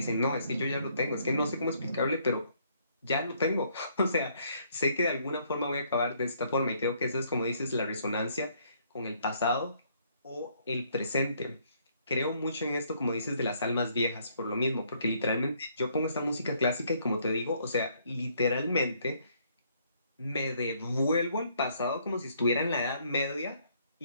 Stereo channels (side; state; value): both; inverted; correlation -0.67